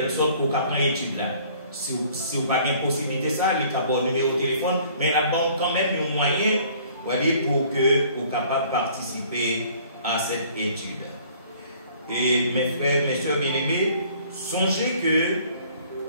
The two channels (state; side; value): inverted; both; correlation -0.55